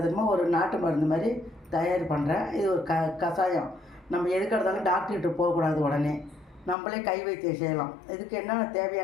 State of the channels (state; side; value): drops out; right; at 6.8 s